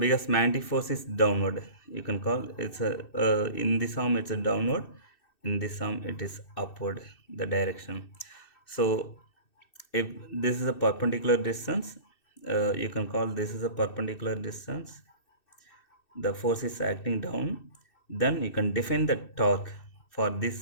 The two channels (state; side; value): late; right; 2.6 ms